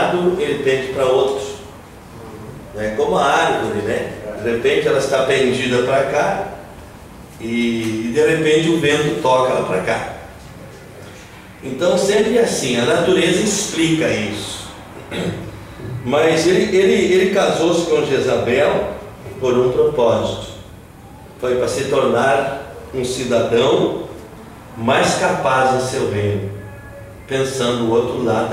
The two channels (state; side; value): identical; both; correlation 1.00